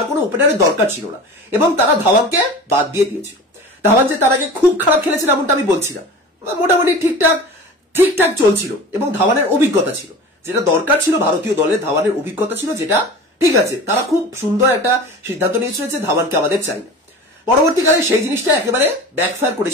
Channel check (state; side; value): normal; both; correlation 0.36